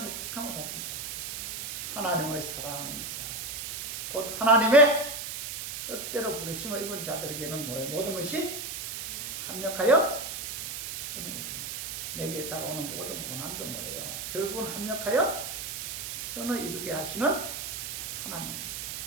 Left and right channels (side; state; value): right; noise; hiss, 5 dB below the sound